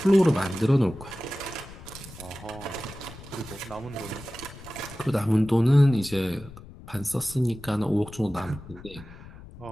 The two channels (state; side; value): noise; left; rumble, 17 dB below the sound